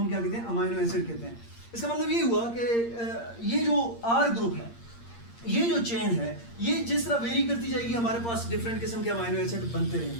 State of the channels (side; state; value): right; late; 8.7 ms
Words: क्या कहते हैं? अमाइनो एसिड कहते हैं। इसका मतलब ये हुआ कि ये जो R ग्रुप है, ये जो चेन है, ये जिस तरह वेरी करती जाएगी हमारे पास डिफरेंट किस्म के अमाइनो एसिड बनते